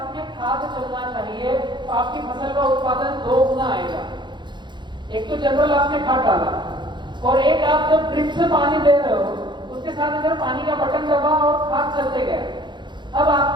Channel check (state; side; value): late; left; 0.22 ms